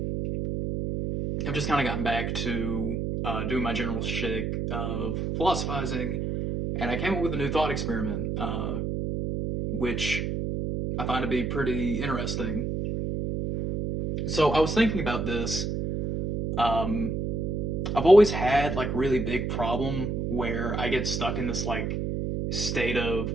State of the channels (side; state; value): right; noise; hum, 1 dB below the sound